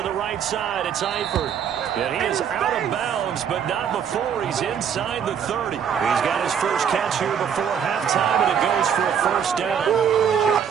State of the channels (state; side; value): quieter; left; 7.9 dB